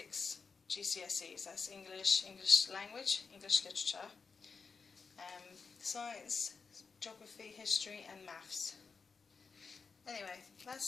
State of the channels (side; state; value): right; quieter; 5.1 dB